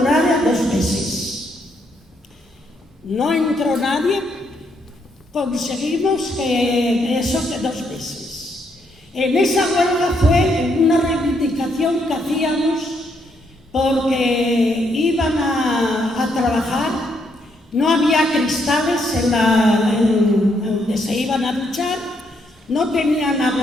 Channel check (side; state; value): both; normal; correlation 0.75